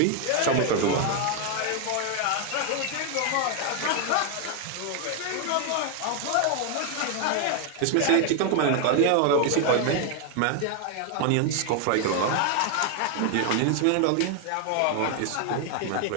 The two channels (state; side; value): different; both; correlation 0.00